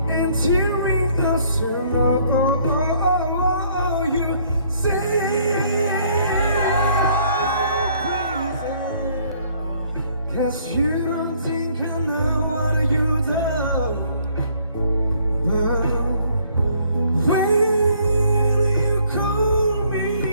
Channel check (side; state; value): both; inverted; correlation -0.63